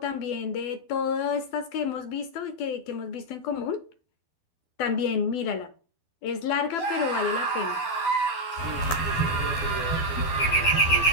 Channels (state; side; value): late; right; 12 ms